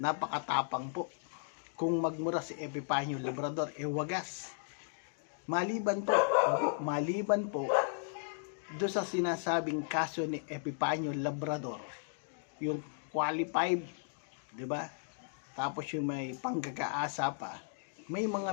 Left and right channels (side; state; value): right; silent; digital silence